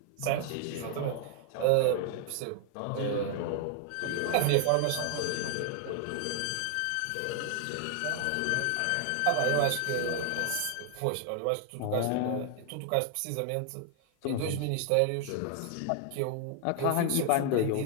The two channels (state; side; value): different; both; correlation 0.00